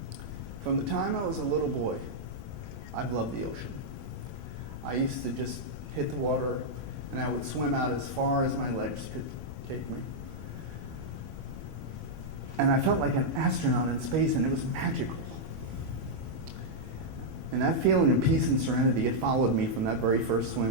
From the time I was a little boy, I've loved the ocean. I used to just hit the water, and I would swim out as far as my legs could take me. And I felt like an astronaut in space, and it was magical. And that feeling of peace and serenity, it followed me from that very first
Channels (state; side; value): noise; left; rumble, 14 dB below the sound